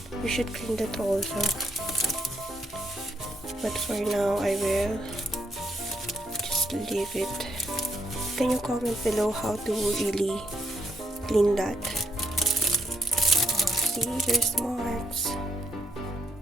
You should clean that also. But for now, I will just leave it. Can you comment below how to really clean that? See, there's marks.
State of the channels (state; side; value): normal; both; correlation 0.74